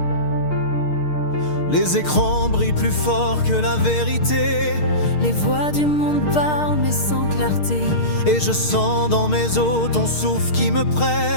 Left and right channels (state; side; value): late; right; 6.5 ms